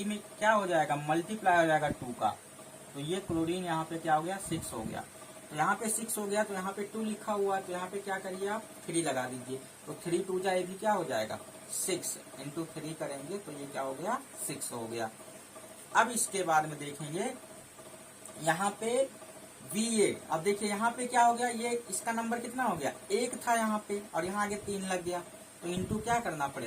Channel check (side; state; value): both; identical; correlation 1.00